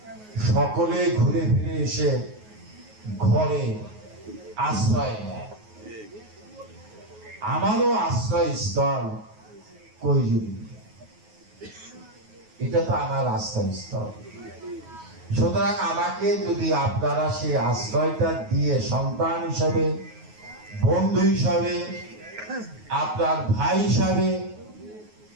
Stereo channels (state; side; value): late; left; 9.4 ms